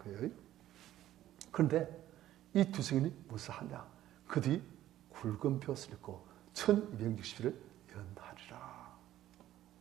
그런데 이 두 증인이 무엇을 하냐? 그들이 굵은 벼슬을 입고 1260일을 예언하리라.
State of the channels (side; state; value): left; quieter; 13.3 dB